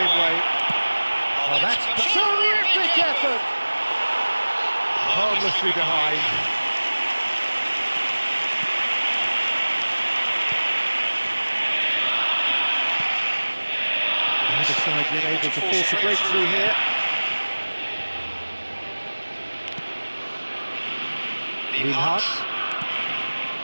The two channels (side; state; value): both; inverted; correlation -1.00